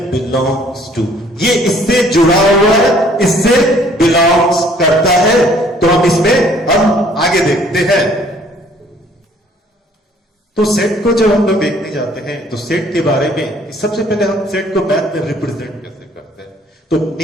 बिलोंग्स टू। ये इससे जुड़ा हुआ है, इससे बिलोंग्स करता है। तो हम इसमें हम आगे देखते हैं। तो सेट को जब हम लोग देखने जाते हैं तो सेट के बारे में सबसे पहले हम सेट को मैथ में रिप्रेजेंट कैसे करते हैं। तो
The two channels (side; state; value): both; normal; correlation 0.59